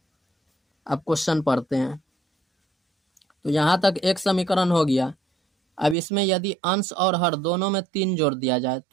अब क्वेश्चन पढ़ते हैं। तो यहाँ तक एक समीकरण हो गया। अब इसमें यदि अंश और हर दोनों में 3 जोड़ दिया जाए,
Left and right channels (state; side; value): drops out; left; at 6.0 s